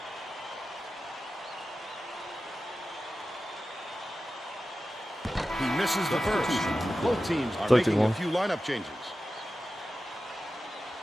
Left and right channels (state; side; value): normal; both; correlation 0.94